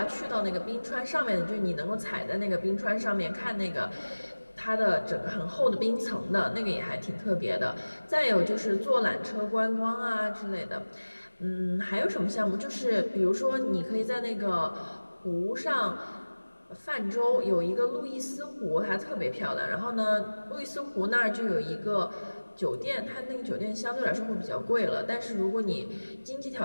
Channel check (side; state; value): both; inverted; correlation -1.00